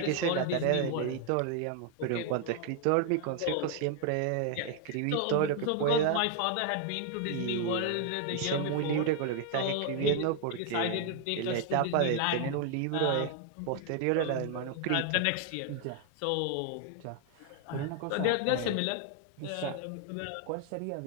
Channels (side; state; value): both; different; correlation 0.00